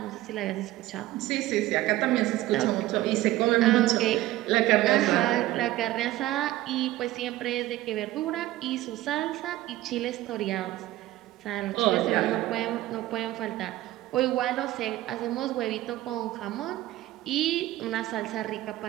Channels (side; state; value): left; quieter; 16.0 dB